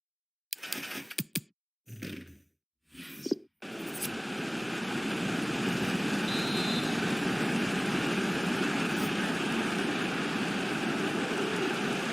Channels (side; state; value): both; identical; correlation 1.00